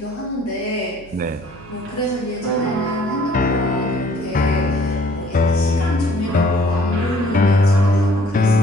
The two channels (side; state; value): right; noise; hum, 22 dB below the sound